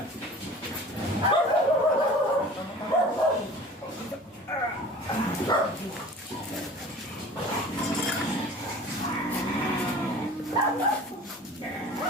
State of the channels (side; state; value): both; normal; correlation 0.42